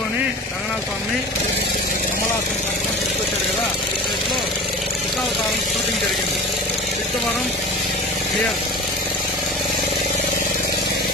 రంగనాథ స్వామిని కమలాసన్ కట్టుకొని తీసుకొచ్చారు కదా. ఈ ప్లేస్ లో దశావతారం షూటింగ్ జరిగింది. సిద్ధవరం క్లియర్.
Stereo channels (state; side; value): normal; both; correlation 0.36